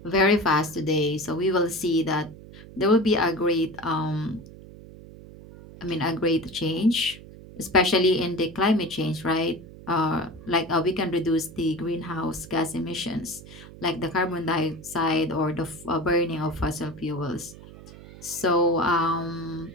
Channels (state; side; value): noise; right; hum, 17 dB below the sound